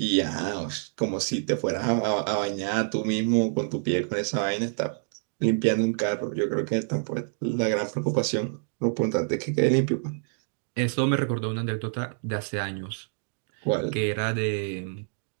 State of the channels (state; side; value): silent; left; digital silence